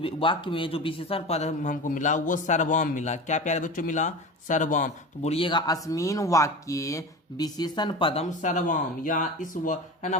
वाक्य में जो विशेषण पद हमको मिला वो सर्वम मिला। क्या प्यारे बच्चों मिला, सर्वम। तो बोलिएगा अस्मिन वाक्य विशेषण पदम सर्वम, या है ना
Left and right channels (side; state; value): both; normal; correlation 0.30